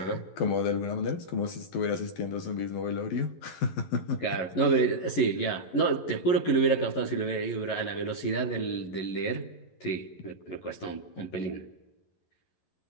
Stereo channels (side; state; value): right; late; 11 ms